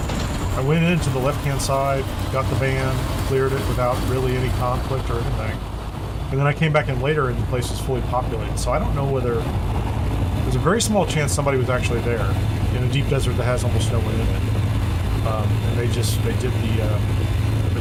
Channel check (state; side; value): identical; both; correlation 1.00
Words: went into the left-hand side, got the van, cleared it without really any conflict or anything. And then I came back in later and the place was fully populated. So I don't know whether... There's a very small chance somebody was actually there in a deep desert that has almost no one in it. And they did